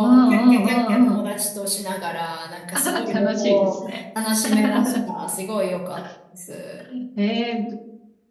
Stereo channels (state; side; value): identical; both; correlation 1.00